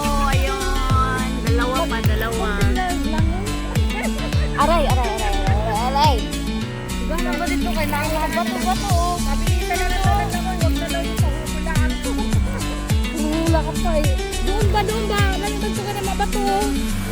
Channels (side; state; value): both; identical; correlation 1.00